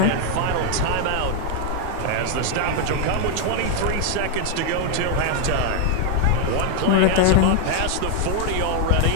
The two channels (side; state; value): both; different; correlation 0.00